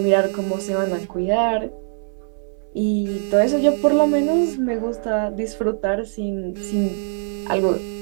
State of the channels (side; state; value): left; silent; 65 dB below the other